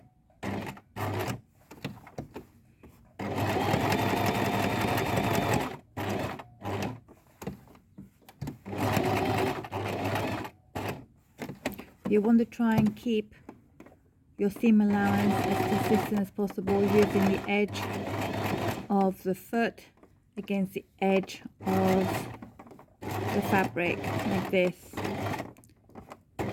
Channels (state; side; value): identical; both; correlation 1.00